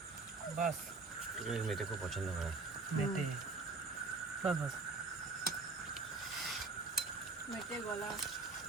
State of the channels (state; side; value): quieter; left; 3.8 dB